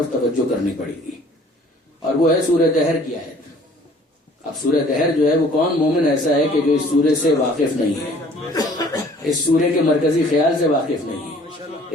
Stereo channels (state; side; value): normal; both; correlation 0.54